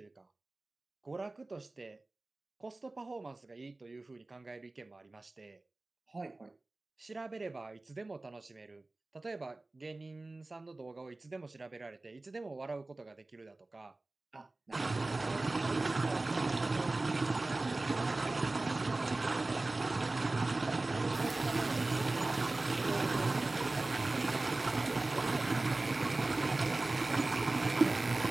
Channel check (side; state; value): left; quieter; 3.0 dB